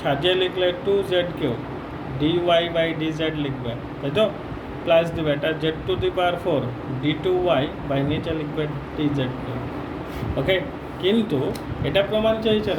লিখলে 2z কেও dy/dz লিখবে, তাই তো? প্লাস দেবে, এটা z⁴ d2y নিচে লিখবে dz2। ওকে, কিন্তু এটা প্রমাণ চাইছে,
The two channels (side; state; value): both; identical; correlation 1.00